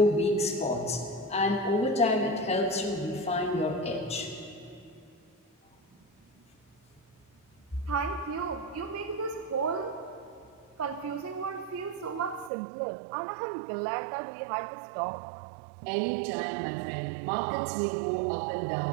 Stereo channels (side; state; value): left; drops out; at 12.5 s